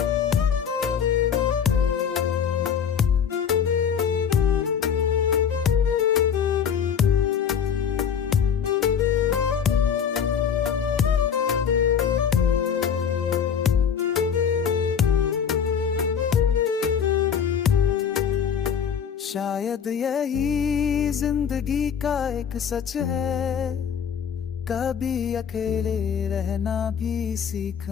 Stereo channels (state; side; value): quieter; right; 7.6 dB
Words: शायद यही जिंदगी का एक सच है, कभी अकेले रहना भी